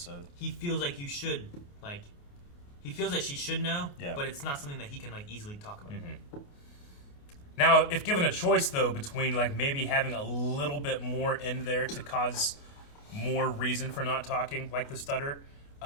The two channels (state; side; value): late; right; 28 ms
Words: He feels like you should he feels like she should know. Yeah. But it's not something that he can easily talk about. Mm-hmm. Now, if given a choice though between maybe having a little bit more in there to cause more reason for not talking, the stutter.